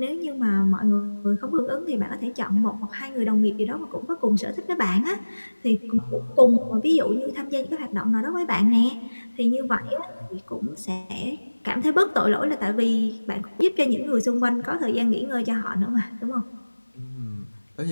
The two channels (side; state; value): both; inverted; correlation -1.00